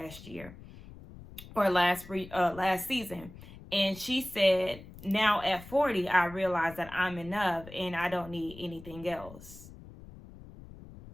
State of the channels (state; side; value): noise; left; rumble, 17 dB below the sound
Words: year or last season. And she said, now at 40, I realize that I'm enough and I don't need anything else.